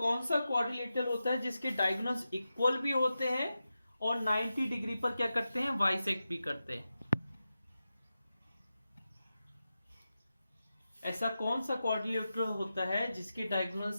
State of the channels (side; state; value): both; inverted; correlation -0.92